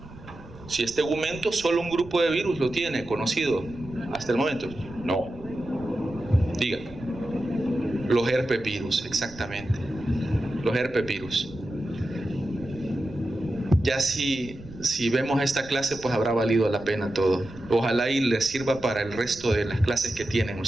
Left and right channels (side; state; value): right; noise; rumble, 18 dB below the sound